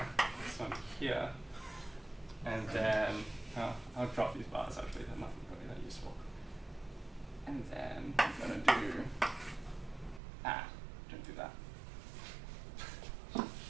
This one here. And then I'll drop these bars actually, they're not really that useful. And then I'm gonna do don't do that.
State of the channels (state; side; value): drops out; left; at 10.2 s